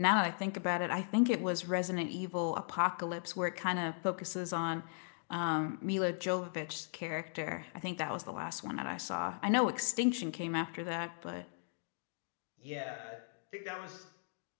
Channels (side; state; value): right; silent; digital silence